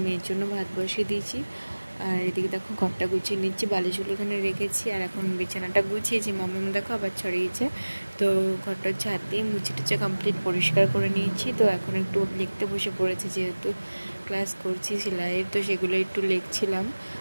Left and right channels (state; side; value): inverted; both; correlation -1.00